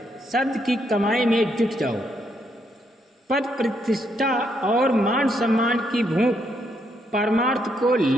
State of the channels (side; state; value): both; normal; correlation 0.76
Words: शब्द की कमाई में जुट जाओ। पद प्रतिष्ठा और मान सम्मान की भूख परमार्थ को